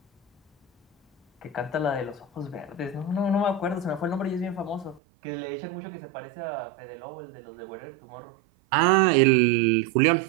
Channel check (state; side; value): drops out; left; at 5.0 s